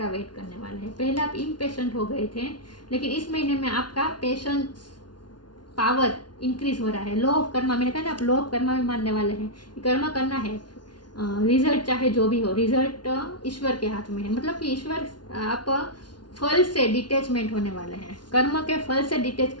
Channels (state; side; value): late; right; 0.70 ms